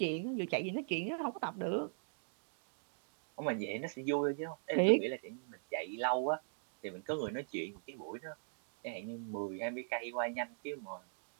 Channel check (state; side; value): silent; left; digital silence